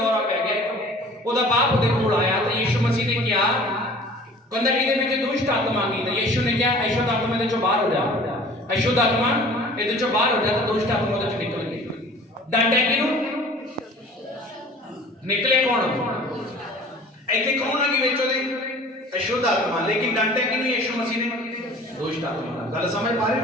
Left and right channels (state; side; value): normal; both; correlation 0.47